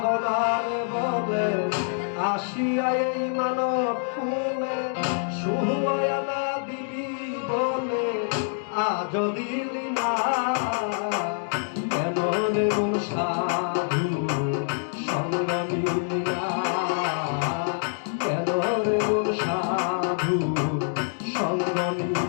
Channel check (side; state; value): right; silent; 59 dB below the other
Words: বলে আসিয়া এই মানব কুলে সুহয়ালা দিবি বলে আজ দিলি না। কেন রে মন সাধু সঙ্গ নিলি না। কেন রে মন সাধু সঙ্গ